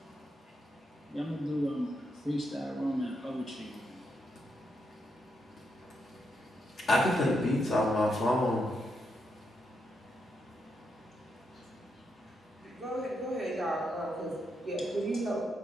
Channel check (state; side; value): normal; both; correlation 0.81